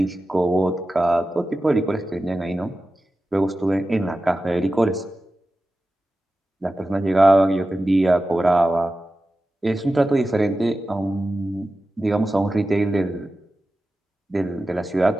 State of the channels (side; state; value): both; normal; correlation 0.94